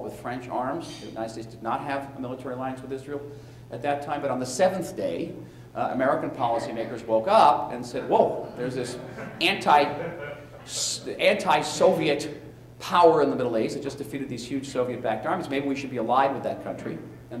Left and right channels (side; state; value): both; identical; correlation 1.00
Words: with French arms. The United States did not have a military alliance with Israel at that time. But on the 7th day, American policymakers woke up and said, whoa, there's this anti-Soviet power in the Middle East that just defeated these huge Soviet-backed armies. Maybe we should be allied with that country.